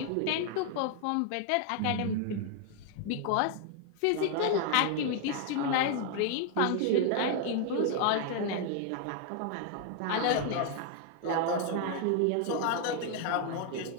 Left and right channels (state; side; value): different; both; correlation 0.00